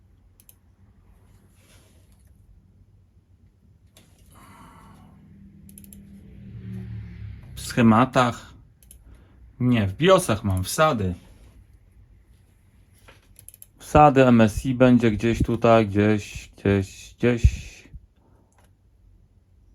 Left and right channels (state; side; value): identical; both; correlation 1.00